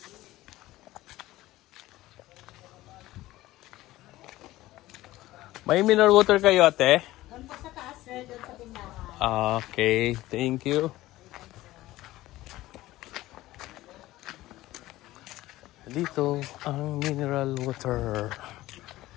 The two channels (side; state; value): right; quieter; 16.8 dB